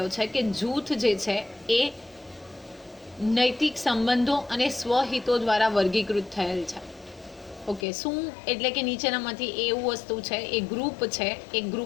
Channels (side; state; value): right; drops out; at 7.9 s